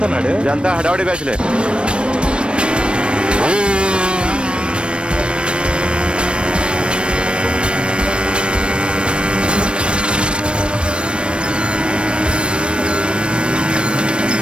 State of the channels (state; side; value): late; left; 0.057 ms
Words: ఇదంతా హడావడి బ్యాచ్లే.